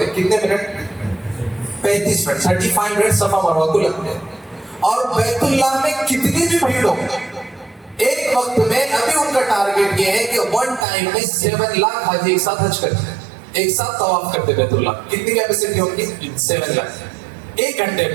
ہیں. کتنے منٹ؟ 35 منٹ، 35 منٹ صفا مروہ کو لگتے ہیں. اور بیت اللہ میں کتنی بھی بھیڑ ہو، ایک وقت میں ابھی ان کا ٹارگیٹ یہ ہے کہ 1 ٹائم میں 7 لاکھ حاجی ایک ساتھ حج کرتے ہیں، ایک ساتھ طواف کرتے بیت اللہ. کتنی کیپیسٹی ہوگی؟ 7 لاکھ 1 گھنٹے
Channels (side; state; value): left; drops out; at 10.9 s